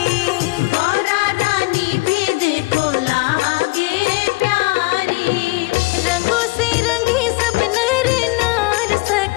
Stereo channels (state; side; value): quieter; right; 23.8 dB